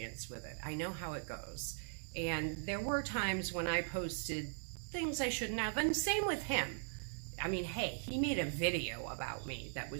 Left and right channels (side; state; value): left; silent; digital silence